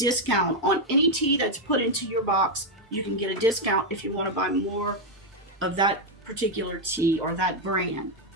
on any tea that's put into your box. You can get a discount if you want to buy more of that particular tea or that brand.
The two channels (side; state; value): both; normal; correlation 0.03